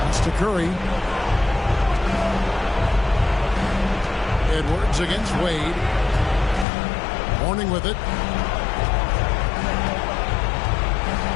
That's to Curry. Edwards against Wade. Horning with it.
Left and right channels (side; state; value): right; drops out; at 6.7 s